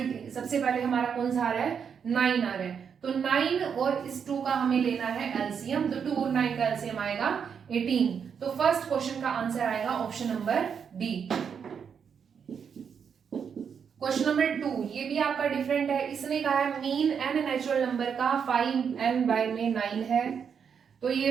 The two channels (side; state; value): left; quieter; 7.0 dB